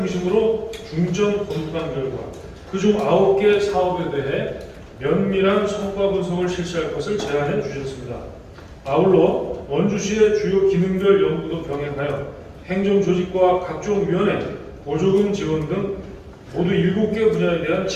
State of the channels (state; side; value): identical; both; correlation 1.00